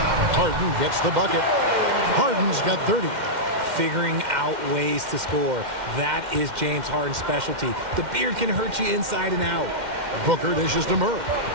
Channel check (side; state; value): left; late; 2.1 ms